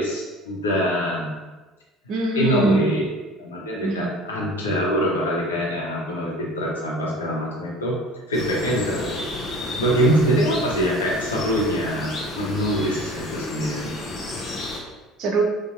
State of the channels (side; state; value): both; normal; correlation 0.42